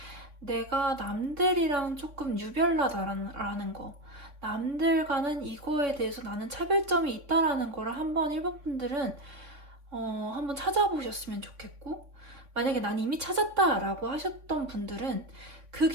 내가 남들이랑 조금 유별나다라는 거 남들과는 이거에 대해서 나는 차별점이 있다라는 거를 한번 일본 분들은 한번 찾아보셨으면 좋겠고 만약에 난 이미 찾았다라고 하셨던 분들은 그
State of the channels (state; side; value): late; left; 3.6 ms